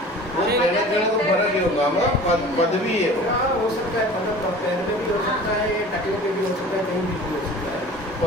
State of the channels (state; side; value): normal; both; correlation 0.42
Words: वो कहने को फर्क ही होगा, पदवी है हो सकता है, पदम का पैर में भी हो सकता है, टकले पे भी हो सकता है, कहीं भी हो सकता है।